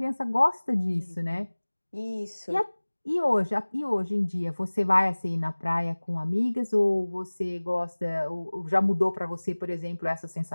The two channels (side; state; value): both; inverted; correlation -1.00